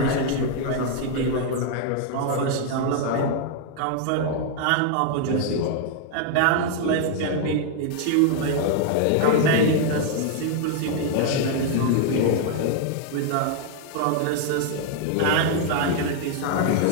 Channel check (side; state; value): both; different; correlation 0.00